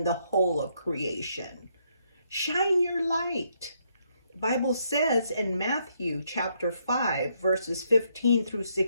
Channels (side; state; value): both; inverted; correlation -0.74